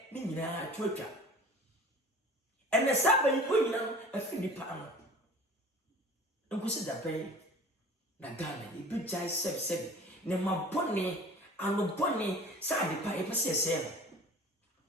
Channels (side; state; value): both; normal; correlation 0.43